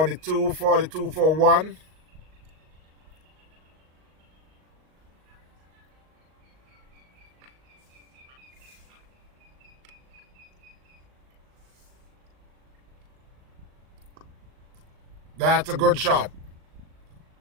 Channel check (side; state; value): left; late; 38 ms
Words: for 1. That's a good shot.